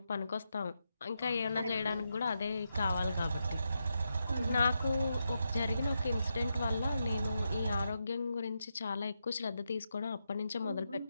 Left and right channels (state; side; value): inverted; both; correlation -0.84